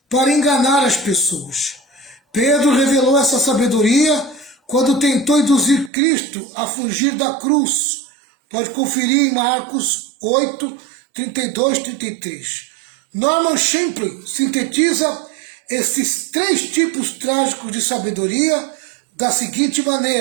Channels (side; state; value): left; drops out; at 5.9 s